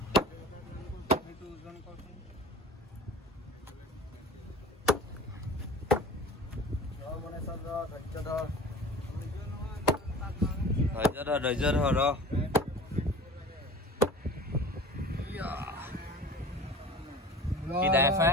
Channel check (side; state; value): both; normal; correlation 0.40